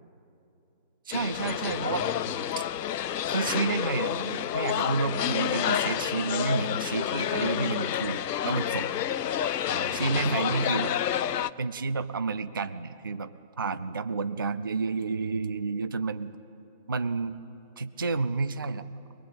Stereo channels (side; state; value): both; inverted; correlation -0.46